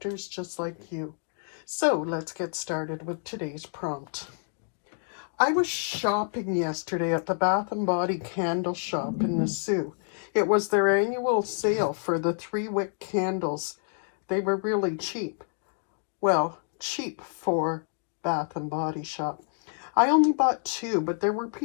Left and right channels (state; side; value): silent; right; 59 dB below the other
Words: just like you. So let's get started with today's prompt. I was shopping yesterday at the Bath & Body candle shop in the Sioux. It was their annual sale for the 3-wick candles. They were really cheap. Well, cheap for Bath & Body shop. I only bought 2, but there were